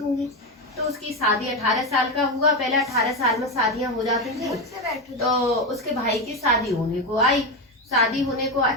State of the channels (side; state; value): both; normal; correlation 0.13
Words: तो उसकी शादी 18 साल का हुआ। पहले 18 साल में शादियां हो जाती थी। तो उसके भाई की शादी होने को आई, शादी होने को